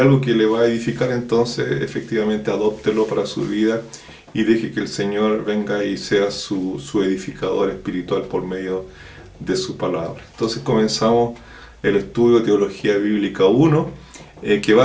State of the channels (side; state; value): both; identical; correlation 1.00